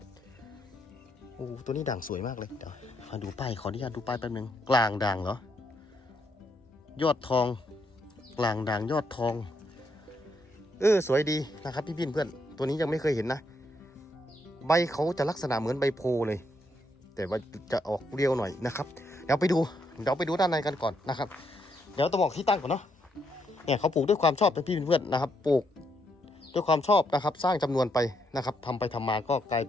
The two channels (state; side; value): normal; both; correlation 0.76